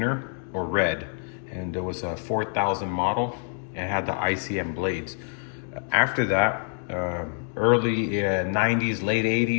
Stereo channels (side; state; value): right; silent; 61 dB below the other